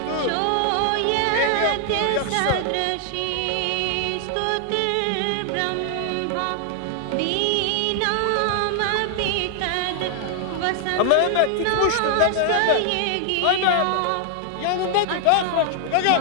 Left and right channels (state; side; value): different; both; correlation 0.00